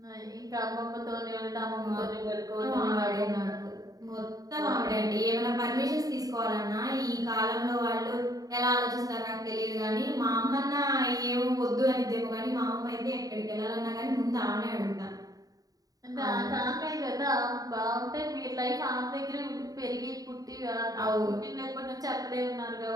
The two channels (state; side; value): late; left; 0.18 ms